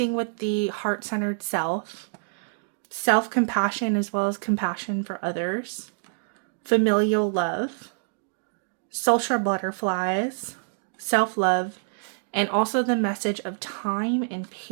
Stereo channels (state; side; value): silent; left; digital silence